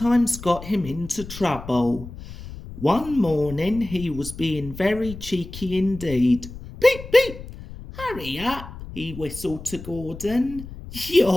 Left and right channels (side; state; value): left; noise; rumble, 13 dB below the sound